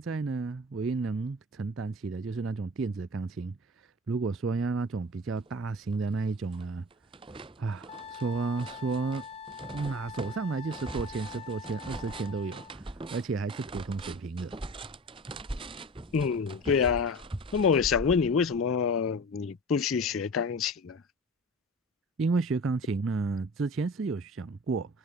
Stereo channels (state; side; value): normal; both; correlation 0.38